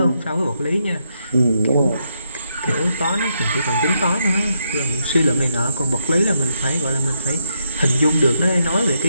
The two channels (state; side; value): inverted; both; correlation -0.76